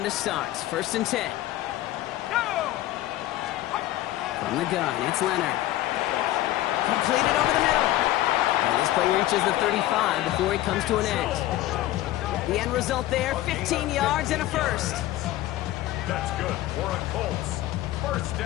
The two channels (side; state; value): right; quieter; 15.2 dB